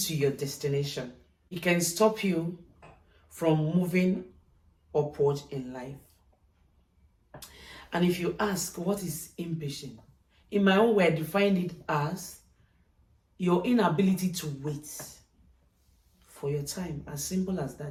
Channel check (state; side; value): identical; both; correlation 1.00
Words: your destination. It can stop you from moving upward in life. And if you ask, what is impatient? In my own way, I define it as your inability to wait for your time, as simple as